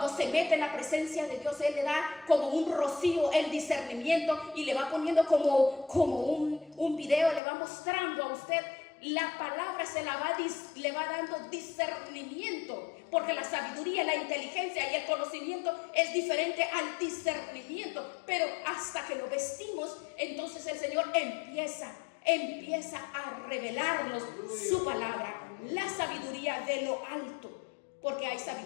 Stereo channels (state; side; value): drops out; right; at 7.4 s